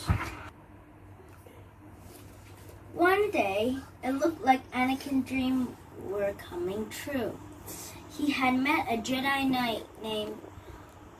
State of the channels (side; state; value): both; identical; correlation 1.00